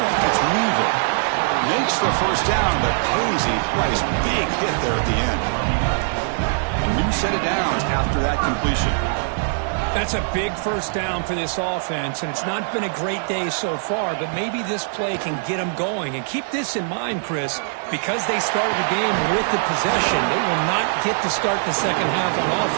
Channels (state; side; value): silent; left; 64 dB below the other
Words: It's Weaver. Makes the first down, but pays a price. Big hit there at the end. A new set of downs after that completion. That's a big first down for this offense, and it's not been a great day so far, but maybe this play can get them going. And keep this in mind, Chris, because they started the game with the possession, they will not get to start the second half on